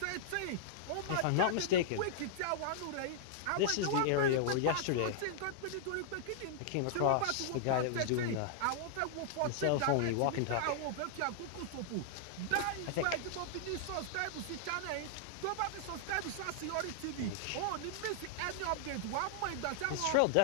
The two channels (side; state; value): both; different; correlation -0.01